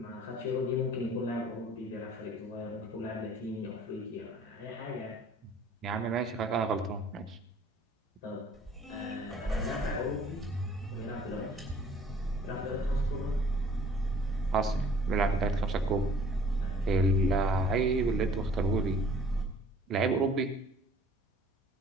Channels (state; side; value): normal; both; correlation 0.55